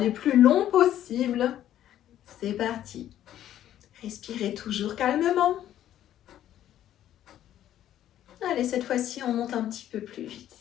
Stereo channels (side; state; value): right; quieter; 11.8 dB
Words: plus longs possibles. C'est parti. Respirez toujours calmement. Allez, cette fois-ci, on monte un petit peu plus vite.